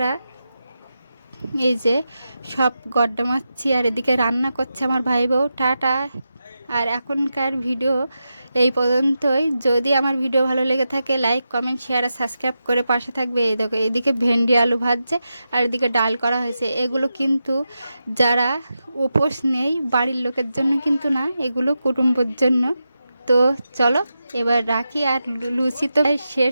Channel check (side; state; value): both; inverted; correlation -0.89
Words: এই যে সব গড্ডা মারছি, আর এদিকে রান্না করছে আমার ভাই বউ। টাটা। আর এখনকার ভিডিও এই পর্যন্তই। যদি আমার ভিডিও ভালো লেগে থাকে, লাইক কমেন্ট শেয়ার আর সাবস্ক্রাইব করে পাশে থাকবে। এই দেখো, এইদিকে ভেন্ডি আলু ভাজছে আর এদিকে ডাল করা হয়েছে। এগুলো কিন্তু যারা উপোস নেই বাড়ির লোকের জন্য কিন্তু না, এগুলো কুটুম্বর জন্য। তো চলো এবার রাখি। আর লুচি তো শেষ,